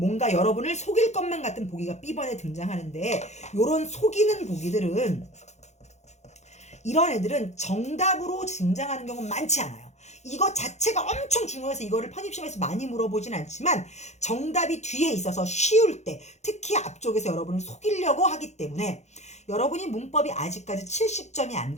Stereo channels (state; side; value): late; right; 0.33 ms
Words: 여러분을 속일 것만 같은 보기가 B번에 등장하는데, 요런 속이는 보기들은, 이런 애들은 정답으로 등장하는 경우는 많지 않아요. 이거 자체가 엄청 중요해서 이거를 편입시험에서 많이 물어보진 않지만 정답이 뒤에 있어서 쉬울 때, 특히 앞쪽에서 여러분을 속이려고 하기 때문에, 여러분이 문법이 아직까지 70점이 안